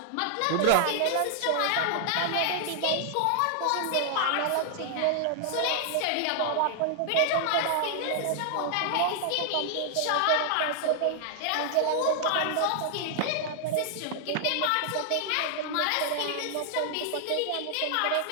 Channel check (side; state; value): both; different; correlation 0.00